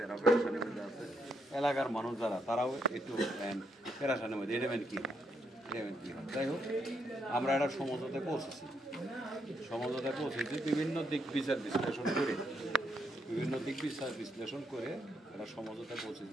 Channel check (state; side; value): normal; both; correlation 0.77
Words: এরাও পেরেশানির মধ্যে আছে। এলাকার মানুষ যারা তারাও একটু পেরেশানির মধ্যে এডেমেন্ট কী হয়। যাই হোক আমরা একটা সমঝোতায় পৌঁছেছি, বিভিন্ন দিক বিচার বিশ্লেষণ করে একটা সমঝোতায়